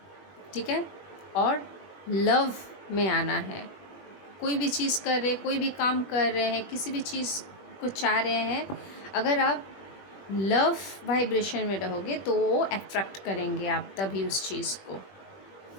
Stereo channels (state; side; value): late; right; 21 ms